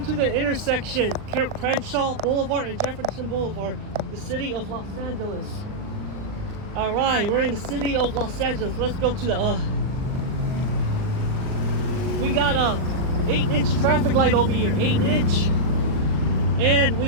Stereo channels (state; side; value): late; left; 39 ms